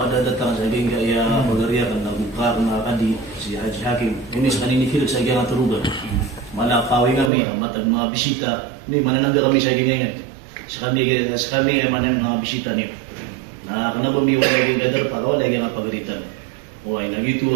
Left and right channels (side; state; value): left; drops out; at 7.3 s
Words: datang sa hingga ya pagariya kan nagbuka na kadi si Haji Hakim. Ini sa kanini fil sa gyang turugan. Malakawi kami matag mga bisita ni mananangga kami sa gingan. Sa kami ay manan mga bisita niyo. Na kanabo mi wala gyang gadar para wala gyang pagaritan. O ay nagito